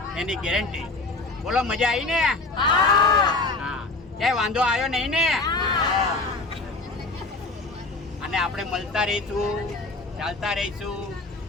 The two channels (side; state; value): right; quieter; 3.3 dB